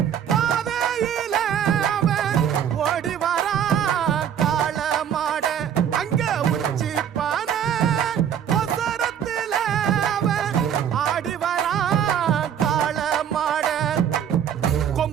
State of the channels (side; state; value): left; quieter; 9.0 dB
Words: பாதையில அவன் ஓடி வரான் காள மாட, அங்க உச்சி பானை ஒசரத்துல அவன் ஆடி வரான் காள மாட,